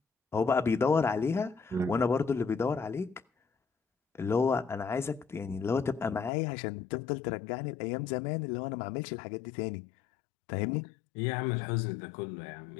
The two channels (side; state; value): right; drops out; at 6.3 s